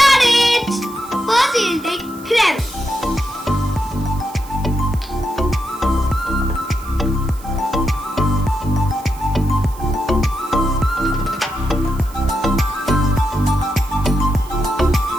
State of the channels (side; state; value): right; noise; hiss, 21 dB below the sound